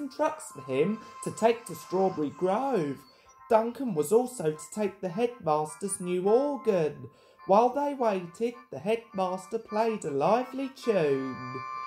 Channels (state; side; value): identical; both; correlation 1.00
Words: trucks for him to take to Strawberry Grove. Duncan was also to take the headmaster's new organ. While they waited, the headmaster played a lively tune.